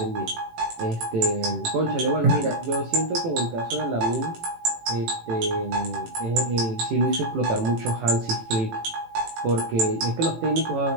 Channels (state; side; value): late; left; 18 ms